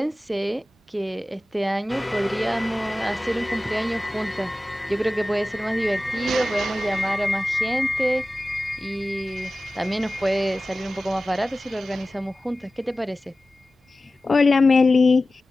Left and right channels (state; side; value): normal; both; correlation 0.96